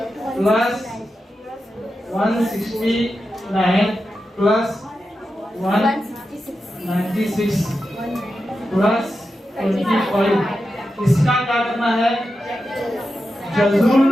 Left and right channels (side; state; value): both; normal; correlation 0.90